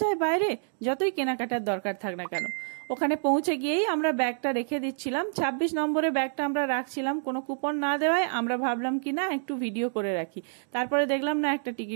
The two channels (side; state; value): left; silent; digital silence